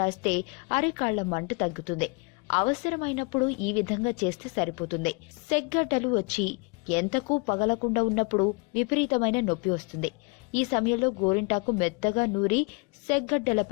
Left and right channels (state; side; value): quieter; right; 31.3 dB